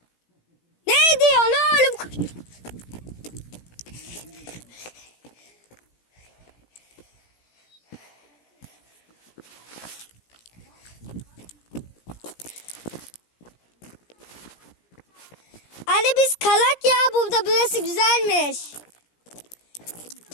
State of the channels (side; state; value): right; late; 17 ms